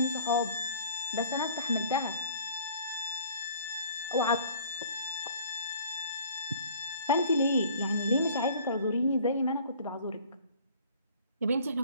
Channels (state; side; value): inverted; both; correlation -0.52